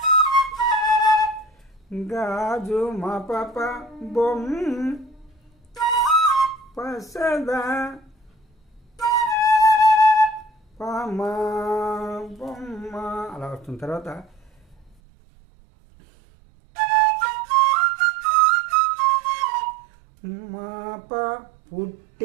గాజు మా పాప బొమ్మ పసద పామ బొమ్మ అలా వస్తుంది. తర్వాత మాప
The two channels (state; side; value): drops out; left; at 15.0 s